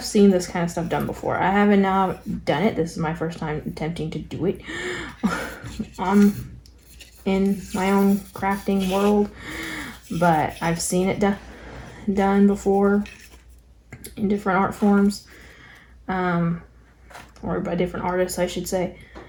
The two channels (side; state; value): both; identical; correlation 1.00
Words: seen this kind of stuff done before. I haven't now done it. This is my first time attempting to do it in my own crafting world, but I've seen it done before in different art forms, or by different artists, I should say.